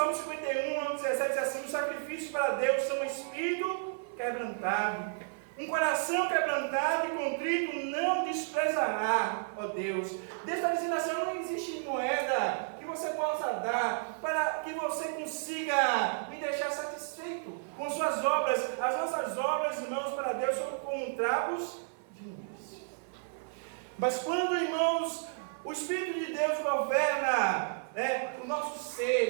51, 17, diz assim: os sacrifícios para Deus são um espírito quebrantado, um coração quebrantado e contrito não desprezará, ó Deus. Deus está dizendo assim: não existe moeda que você possa dar para que você consiga me deixar satisfeito com suas obras. As nossas obras, irmãos, para Deus são como trapos de imundícia. Mas quando, irmãos, o Espírito de Deus governa o nosso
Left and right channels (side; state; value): left; silent; 56 dB below the other